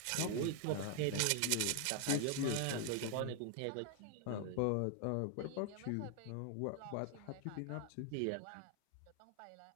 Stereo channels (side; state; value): both; different; correlation 0.00